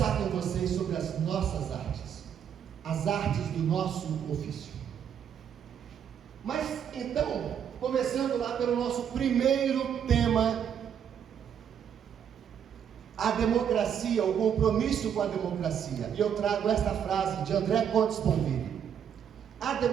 com vocês sobre as nossas artes, as artes do nosso ofício. Mas então, começando lá pelo nosso primeiro tema, a democracia, o compromisso com a democracia. E eu trago esta frase de André Comte Sponville: a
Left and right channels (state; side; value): quieter; left; 8.5 dB